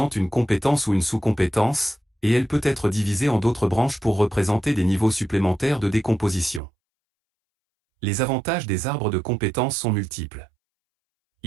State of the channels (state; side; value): drops out; left; at 6.6 s